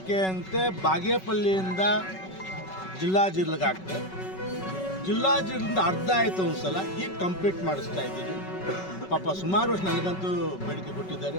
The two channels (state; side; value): late; right; 5.3 ms